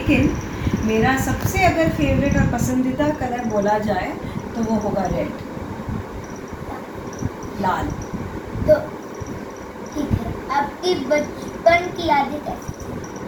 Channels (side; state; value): both; identical; correlation 1.00